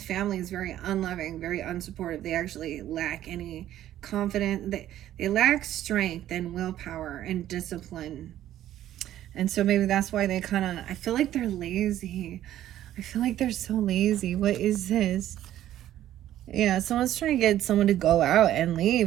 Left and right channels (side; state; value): left; quieter; 12.6 dB